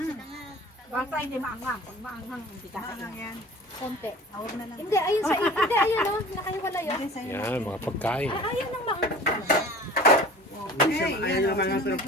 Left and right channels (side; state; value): both; normal; correlation 0.42